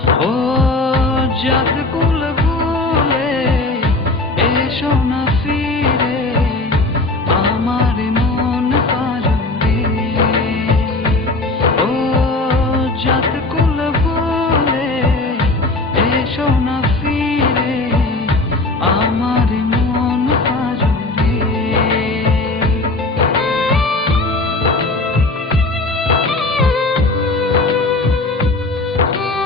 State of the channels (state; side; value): quieter; right; 3.0 dB